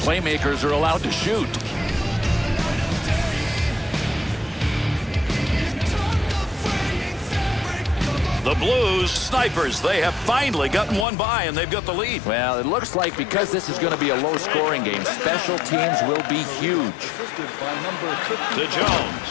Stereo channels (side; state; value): right; drops out; at 11.1 s